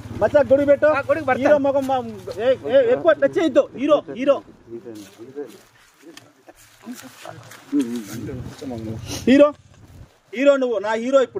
మచ్చా గొడుగు పెట్టు. హీరో మొగం ఎక్కువ టచ్ చేయొద్దు. హీరో హీరో హీరో హీరో నువ్వు నా హీరో.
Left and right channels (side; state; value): both; identical; correlation 1.00